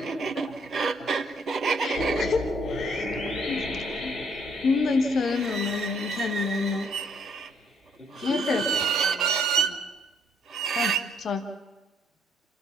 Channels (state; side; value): normal; both; correlation 0.66